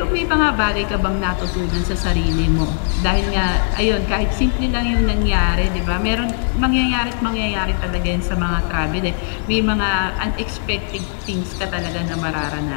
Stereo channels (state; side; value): silent; right; digital silence